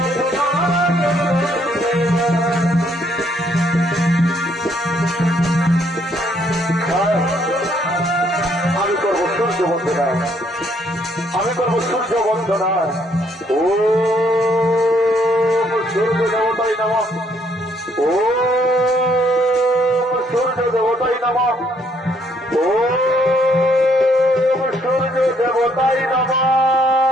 আমি করবো সূর্য বন্দনা, আমি করবো সূর্য বন্দনা। ও সূর্য দেবতাই নমঃ, ও সূর্য দেবতাই নমঃ, ও সূর্য দেবতাই নমঃ।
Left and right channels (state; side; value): normal; both; correlation 0.68